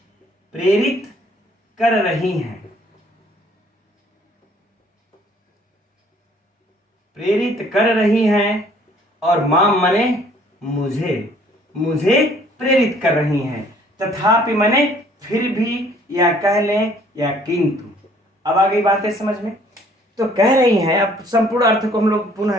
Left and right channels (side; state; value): both; normal; correlation 0.59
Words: प्रेरित कर रही हैं, प्रेरित कर रही हैं। और माम माने मुझे, मुझे प्रेरित कर रही हैं। तथापि माने फिर भी, या कह लें या किंतु। अब आ गई बातें समझ में। तो कह रही हैं, अब संपूर्ण अर्थ को हम लोग पुनः